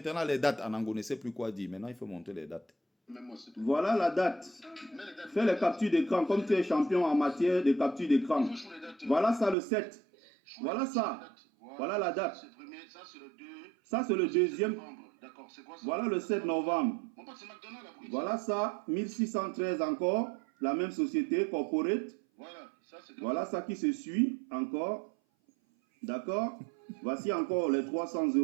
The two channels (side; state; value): left; drops out; at 9.6 s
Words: les dates. Anango ne sait plus quoi dire. Maintenant, il faut montrer les dates. Voilà la date. Fais les captures d'écran comme tu es champion en matière de capture d'écran. Voilà ça le 7. Voilà ça. Voilà la date. Ça, c'est le deuxième. Voilà le 7 novembre. Voilà ça, 1613 encore. La même société, Corporate. Voilà ça qui se suit encore. D'accord? Voici encore les 300